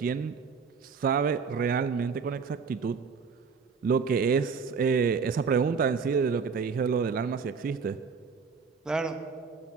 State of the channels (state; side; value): quieter; left; 5.5 dB